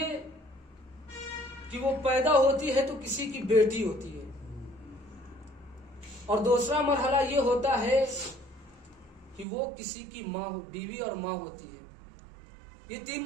कि वो पैदा होती है तो किसी की बेटी होती है, और दूसरा मरहला ये होता है कि वो किसी की माँ, बीवी और माँ होती है। ये 3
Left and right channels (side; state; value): left; drops out; at 9.5 s